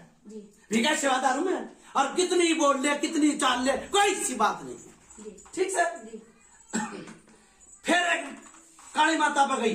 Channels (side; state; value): both; identical; correlation 1.00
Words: जी विकास सेवादार हूं मैं, और कितनी बोल ले कितनी चाल ले कोई सी बात नहीं। जी ठीक से जी फिर एक काली माता पर